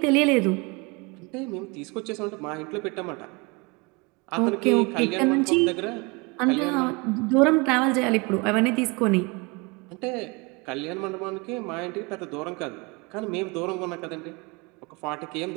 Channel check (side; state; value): left; quieter; 28.0 dB